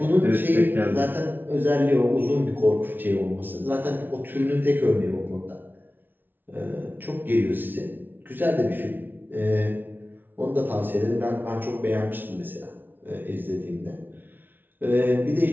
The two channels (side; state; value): left; late; 0.093 ms